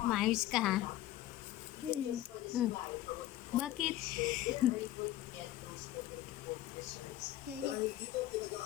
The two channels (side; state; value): right; quieter; 14.4 dB